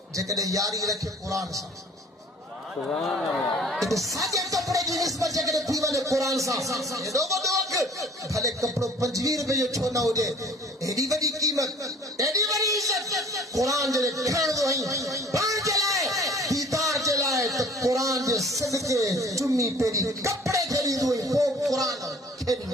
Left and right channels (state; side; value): normal; both; correlation 0.50